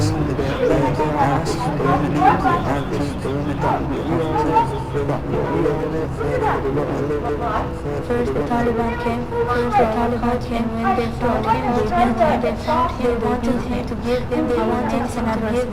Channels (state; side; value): identical; both; correlation 1.00